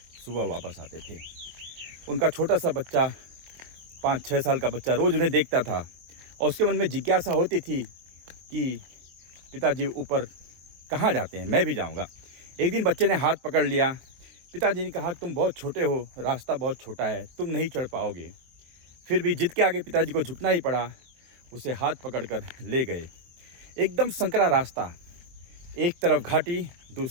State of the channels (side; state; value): left; late; 23 ms